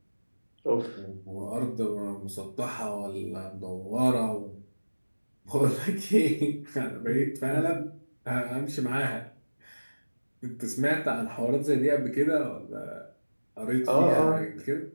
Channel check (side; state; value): both; inverted; correlation -1.00